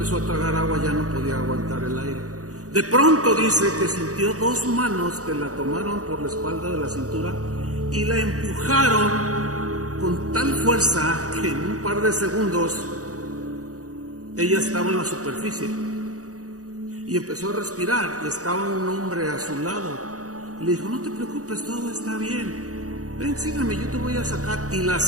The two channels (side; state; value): left; late; 0.66 ms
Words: a tragar agua, ya no podía aguantar el aire. De pronto dice que sintió dos manos que la tomaron por la espalda de la cintura y la empujaron con tal fuerza que en un par de segundos ella estaba en la superficie y empezó a respirar, y estaba un hombre a su lado. Le dijo: no te preocupes, todo está bien, ven, sígueme, yo te voy a sacar. Y la